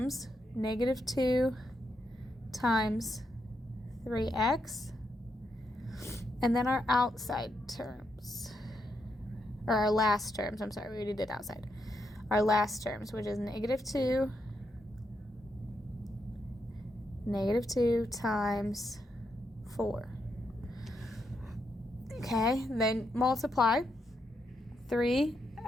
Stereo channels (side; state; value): both; normal; correlation 0.81